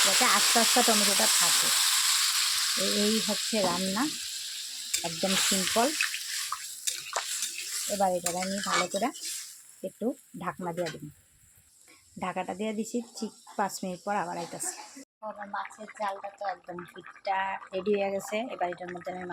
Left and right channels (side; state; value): both; identical; correlation 1.00